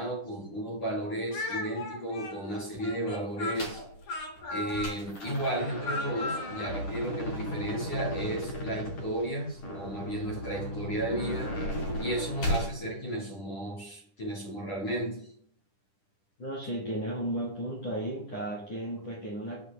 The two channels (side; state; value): right; late; 10 ms